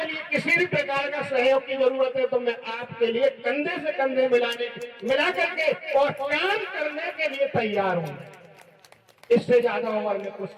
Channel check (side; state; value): both; identical; correlation 1.00